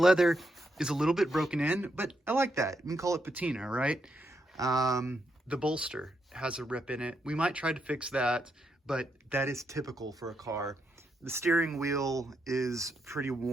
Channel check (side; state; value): both; normal; correlation 0.80